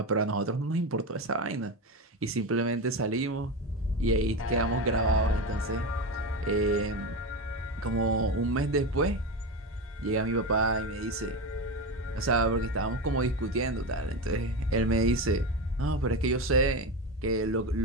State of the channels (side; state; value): both; normal; correlation 0.19